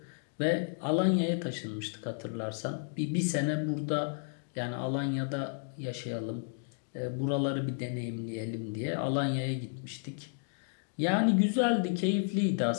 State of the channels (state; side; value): silent; right; digital silence